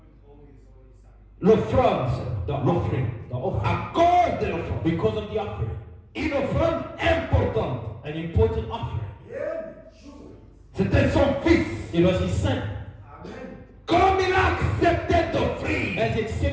L'offrande. The offering. The offering. À cause de l'offrande. Because of the offering. Une offrande importante. An important offering. C'était son fils. It was his son. Comme il a accepté d'offrir As he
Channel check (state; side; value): identical; both; correlation 1.00